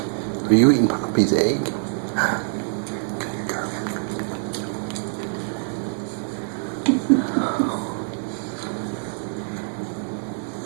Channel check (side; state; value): left; silent; 62 dB below the other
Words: Are you eating Poppy's egg? Good girl.